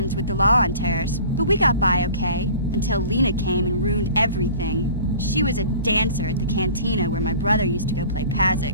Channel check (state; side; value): inverted; both; correlation -0.44